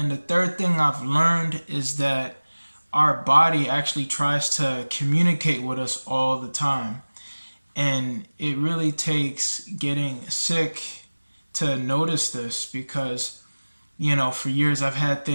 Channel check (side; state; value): both; inverted; correlation -1.00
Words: the third thing I've learned is that our body actually tries to communicate with us all the time. And it really takes getting sick to notice this, because, you know, for years I've had